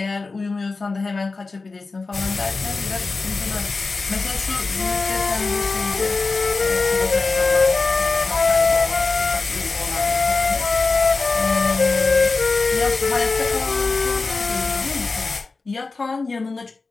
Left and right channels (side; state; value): right; quieter; 3.9 dB